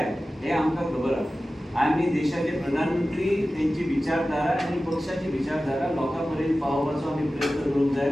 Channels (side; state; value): both; normal; correlation 0.95